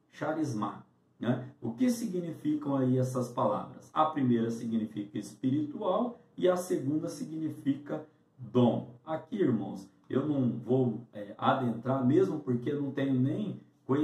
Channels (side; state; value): both; identical; correlation 1.00